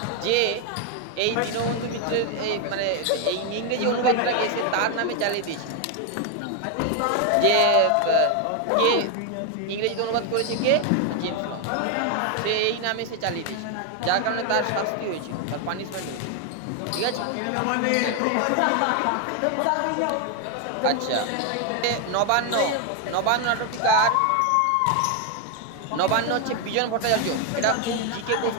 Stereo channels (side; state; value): both; different; correlation 0.01